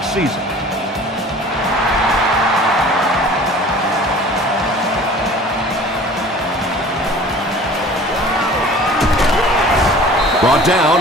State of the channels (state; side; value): normal; both; correlation 0.45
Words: season. Brought down